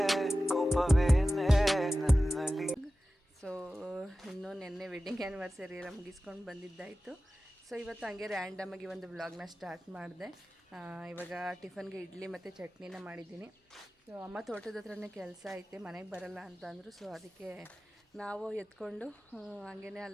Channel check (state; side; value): normal; both; correlation 0.95